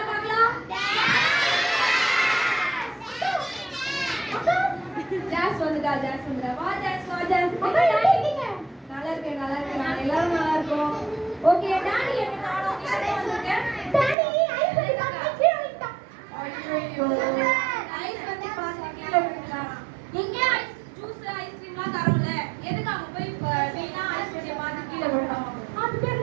பார்க்கலாம். ஜாஸ் வந்துடா ஜாஸ் வந்துடா. வா ஜாஸ் வா ஜாஸ். நல்லா இருக்கேன் நல்லா இருக்கேன். நான் எல்லாரும் நல்லா இருக்கோம். ஓகே டாடி என்ன காணோம்? நீங்க வந்திருக்க? டாடி ஐஸ் வந்து கீழ விட்டா. ஐயோ ஐஸ் வந்து பாத்து கீழ விட்டா. இங்க ஐஸ் ஜூஸ் ஐஸ்கிரீம்லாம் தரோம்ல, எதுக்கு அங்க போய் வீணா ஐஸ் வண்டிய பாத்து கீழ விட்டோம்? அது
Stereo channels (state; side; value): drops out; left; at 14.2 s